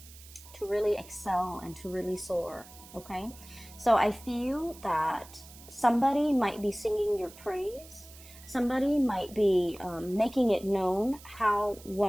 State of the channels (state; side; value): noise; right; hiss, 20 dB below the sound